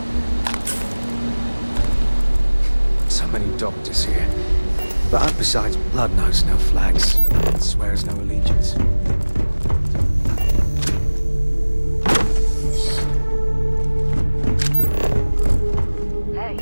So many doctors here. But besides, blood knows no flags, swears no allegiance. Hey.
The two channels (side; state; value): both; inverted; correlation -1.00